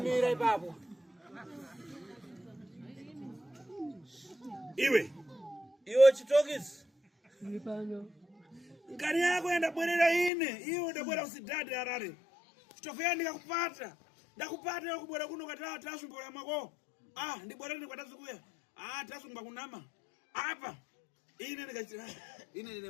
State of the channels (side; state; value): right; drops out; at 10.3 s